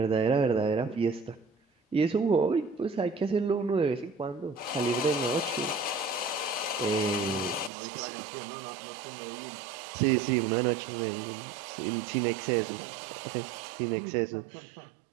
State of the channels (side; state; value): left; drops out; at 7.7 s